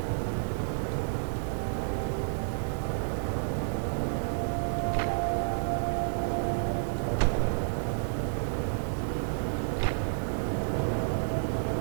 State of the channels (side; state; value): left; silent; digital silence